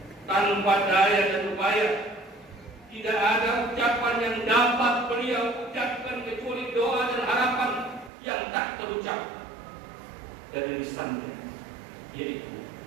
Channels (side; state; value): left; drops out; at 8.1 s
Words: tanpa daya dan upaya. Tidak ada ucapan yang dapat beliau ucapkan kecuali doa dan harapan yang tak terucap dari lisannya, yaitu